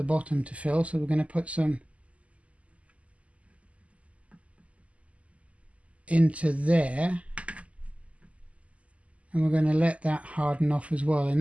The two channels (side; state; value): left; late; 0.066 ms